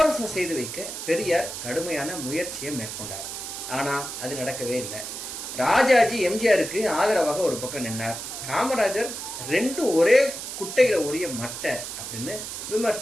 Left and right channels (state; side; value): noise; right; hiss, 7 dB below the sound